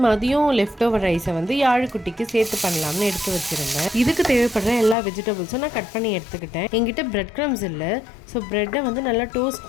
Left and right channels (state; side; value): drops out; right; at 5.0 s